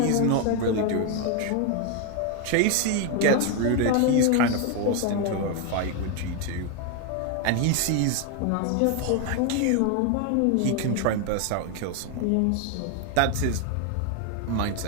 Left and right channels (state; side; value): different; both; correlation 0.01